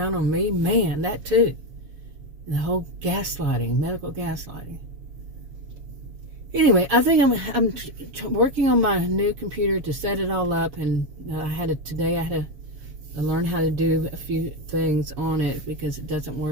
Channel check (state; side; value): late; left; 7.2 ms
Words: on me, man, that too. And the whole gaslighting, medical gaslighting. Anyway, I think I'm working on my new computer to set it all up, and today I had to learn how to do a few things on it because it doesn't